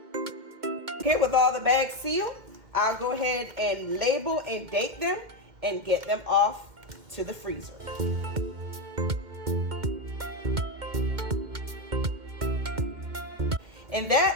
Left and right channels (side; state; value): left; late; 2.1 ms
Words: Okay, with all the bags sealed, I'll go ahead and label and date them and get them off to the freezer. And